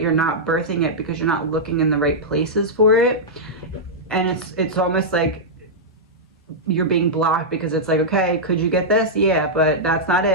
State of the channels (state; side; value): normal; both; correlation -0.09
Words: not birthing it because you're not looking in the right places for it. And it's almost like you're being blocked, because it's like, okay, could you get this? Yeah, but that's not